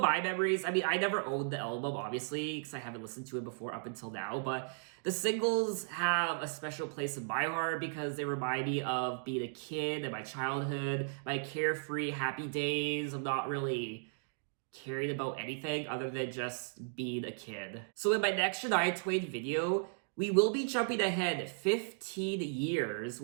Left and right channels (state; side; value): silent; left; digital silence